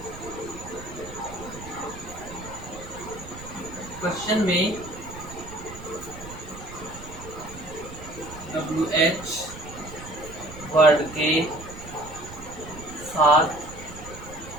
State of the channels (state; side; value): noise; right; rumble, 14 dB below the sound